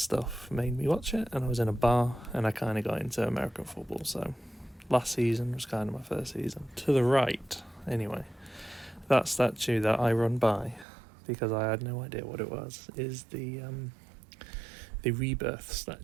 made me watch it, and I was in a bar and I kind of got into American football. So last season was kind of my first season. To the right, anyway, that statue that I run by, because I had no idea what it was, is the Rebirth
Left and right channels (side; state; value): left; drops out; at 10.9 s